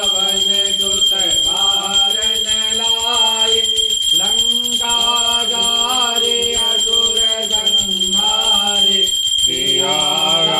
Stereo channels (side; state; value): both; identical; correlation 1.00